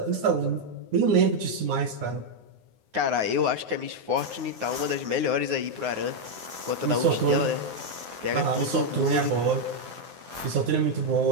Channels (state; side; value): late; left; 9.6 ms